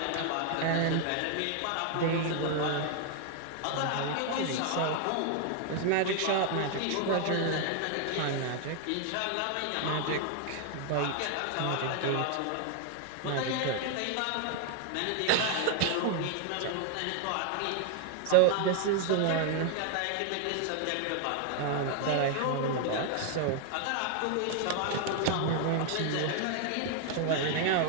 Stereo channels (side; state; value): both; different; correlation 0.00